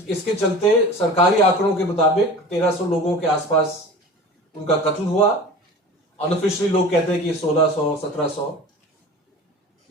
चलते सरकारी आंकड़ों के मुताबिक 1300 लोगों के आसपास उनका कत्ल हुआ। अनऑफिशियली लोग कहते हैं कि 1600 1700,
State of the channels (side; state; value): both; normal; correlation 0.38